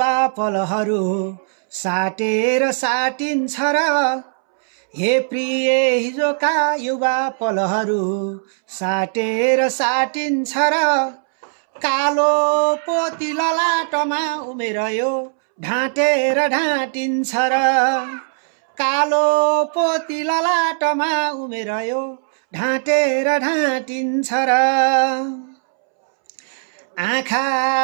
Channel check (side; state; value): left; silent; 66 dB below the other